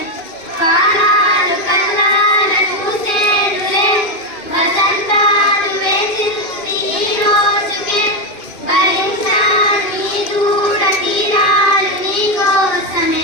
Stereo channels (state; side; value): late; right; 2.5 ms